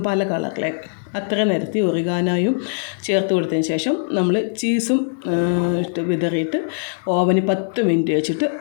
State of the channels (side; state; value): right; silent; digital silence